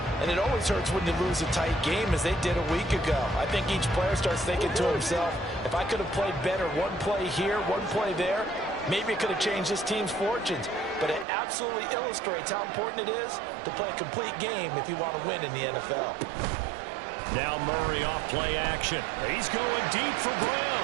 And it always hurts when you lose a tight game as they did a week ago. I think each player starts thinking to himself, if I could have played better one play here, one play there, maybe it could have changed this team's fortunes. But it absolutely illustrates how important it is to play a complete game if you want to win in the NFL. Now Murray off play action. He's going deep for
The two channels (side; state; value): left; drops out; at 11.2 s